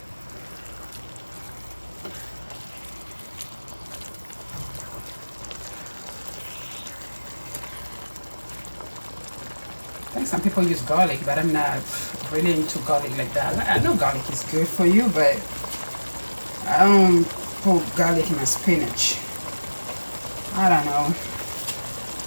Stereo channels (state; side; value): inverted; both; correlation -1.00